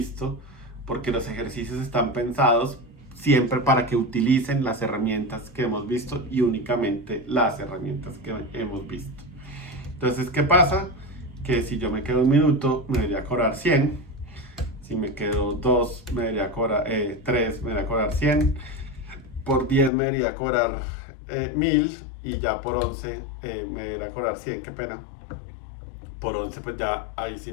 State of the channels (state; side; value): drops out; right; at 19.9 s